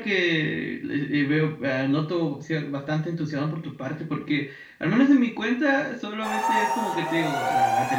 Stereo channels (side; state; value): both; identical; correlation 1.00